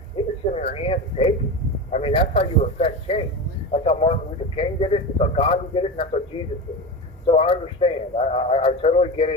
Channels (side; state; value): both; normal; correlation 0.23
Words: you just sit in your hands and take it. I mean, that's how you affect change. That's how Martin Luther King did it. That's how Gandhi did it, and that's how Jesus did it. So I understand. I totally get